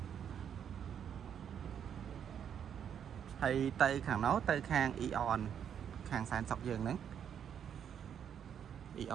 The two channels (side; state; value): left; quieter; 8.5 dB